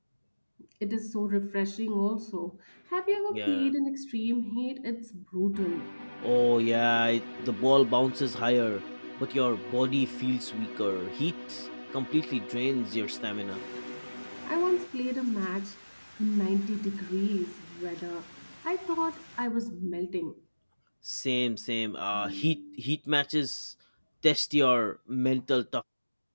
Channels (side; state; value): both; inverted; correlation -1.00